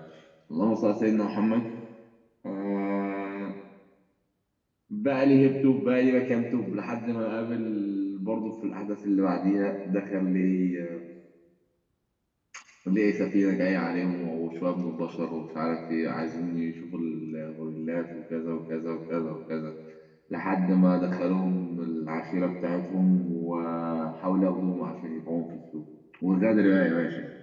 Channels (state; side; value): identical; both; correlation 1.00